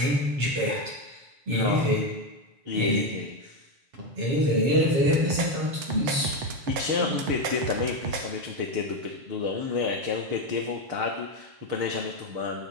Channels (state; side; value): late; left; 7.3 ms